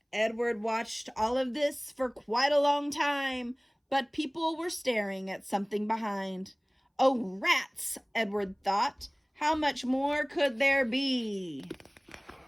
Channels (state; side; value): identical; both; correlation 1.00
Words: Edward watched all of this for quite a long time, but people were staring at something behind. Oh, rats, Edward thought. How much more could there be?